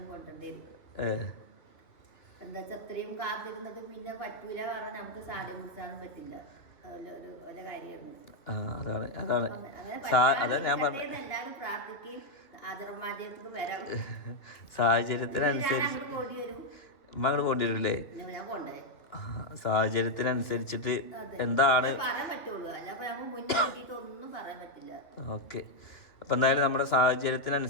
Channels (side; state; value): right; late; 2.5 ms